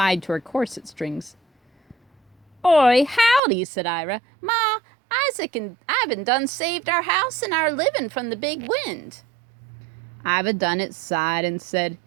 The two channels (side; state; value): left; drops out; at 3.4 s